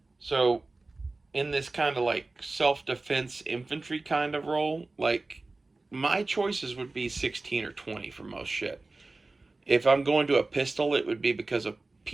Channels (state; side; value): quieter; left; 3.3 dB